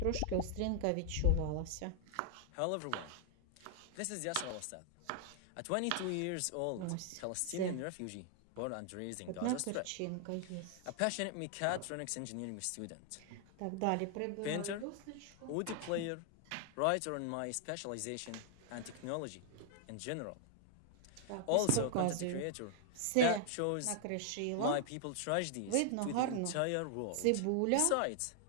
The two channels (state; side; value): different; both; correlation 0.00